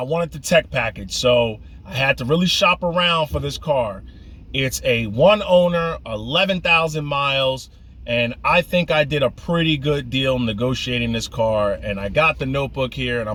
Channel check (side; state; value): both; identical; correlation 1.00